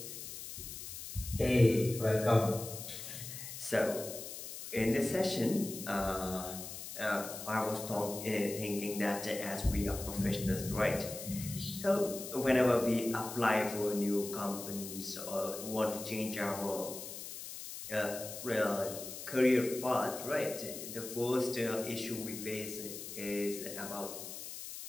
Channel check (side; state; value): left; noise; hiss, 9 dB below the sound